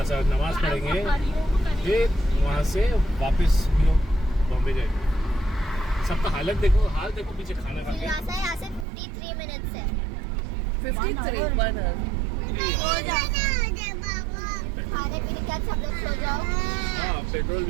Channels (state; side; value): drops out; left; at 8.8 s